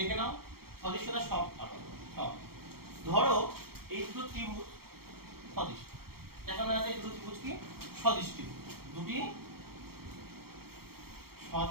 নাও, সদৃশ্যতা সব পারবে সব। ধরো এই দুটো ত্রিভুজ সদৃশ, দেখানো যাচ্ছে এই দুটো ত্রিভুজ কি সদৃশ ত্রিভুজ, দুটি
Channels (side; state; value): left; late; 0.95 ms